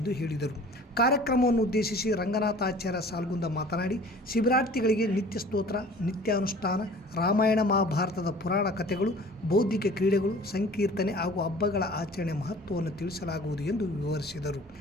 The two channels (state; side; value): normal; both; correlation 0.46